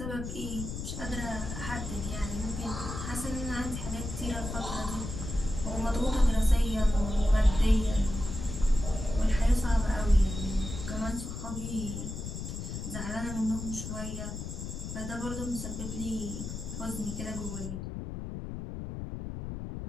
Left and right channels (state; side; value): noise; left; rumble, 6 dB below the sound